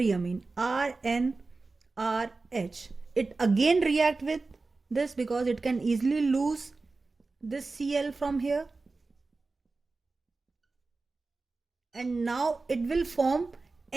amine RNRH, it again react with this because it can easily lose this Cl from here, and now it will form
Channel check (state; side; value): quieter; left; 3.7 dB